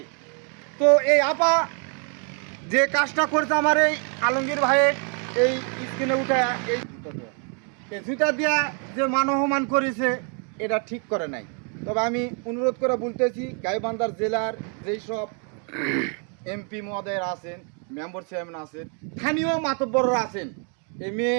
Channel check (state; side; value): quieter; left; 39.8 dB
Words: তো এই আপা যে কাজটা করেছে আমার এই আলমগীর ভাইয়ের এই স্ক্রিনে উঠে এই জুতা দিয়া যে মানবমান করেছে এটা ঠিক করে নাই তবে আমি অনুরোধ করে বলতেছি গাইবান্ধার জেলার যেই সব এমপি মহোদয়ের আছেন মেম্বার চেয়ারম্যান আছেন স্থানীয় মাতব্বররা আছেন এই